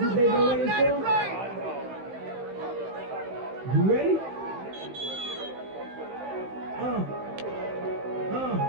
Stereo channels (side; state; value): left; late; 15 ms